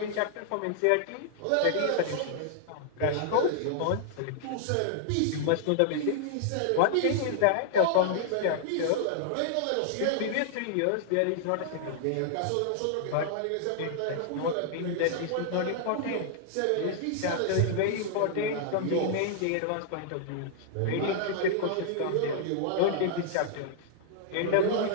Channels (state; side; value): different; both; correlation -0.01